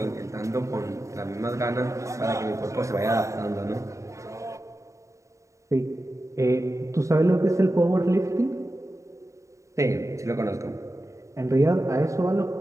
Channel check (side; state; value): left; late; 0.15 ms